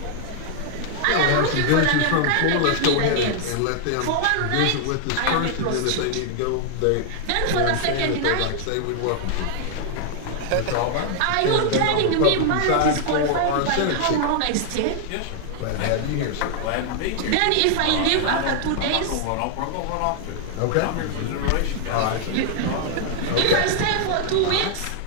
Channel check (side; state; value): both; different; correlation 0.00